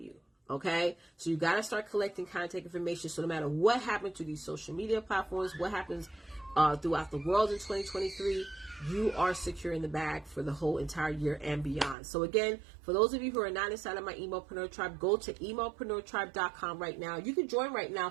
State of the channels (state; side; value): drops out; left; at 12.0 s